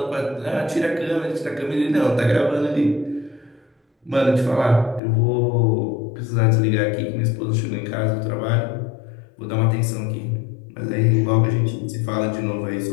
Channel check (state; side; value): drops out; right; at 5.0 s